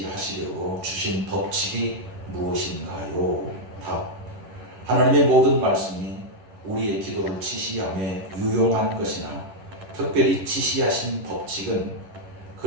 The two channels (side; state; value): left; late; 10 ms